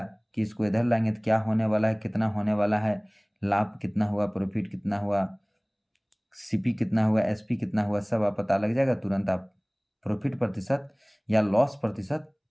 कि इसको इधर लाएंगे तो क्या होने वाला है, कितना होने वाला है, लाभ कितना हुआ, प्रॉफिट कितना हुआ, सीपी कितना हुआ, एसपी कितना हुआ, सब आप पता लग जाएगा। तुरंत आप प्रॉफिट प्रतिशत या लॉस प्रतिशत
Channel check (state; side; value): identical; both; correlation 1.00